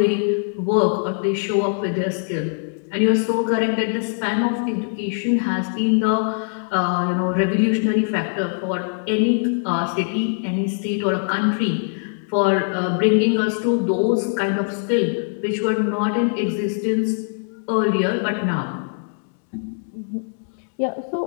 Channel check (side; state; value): right; silent; digital silence